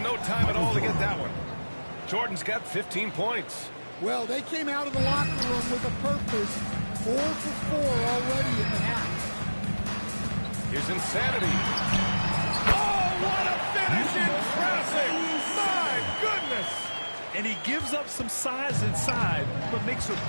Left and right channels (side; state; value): both; inverted; correlation -1.00